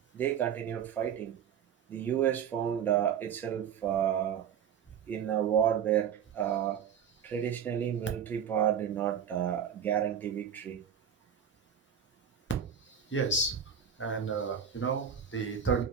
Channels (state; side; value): quieter; left; 8.1 dB